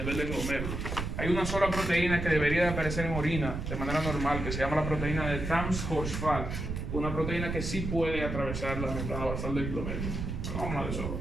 del glomérulo. Hay una sola proteína que debería de aparecer en orina de manera normal, que se llama la proteína de Tams-Horsfall, una proteína que sí puede atravesar la membrana basal del glomérulo. Pero vamos a hablar de eso.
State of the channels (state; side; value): noise; right; rumble, 4 dB below the sound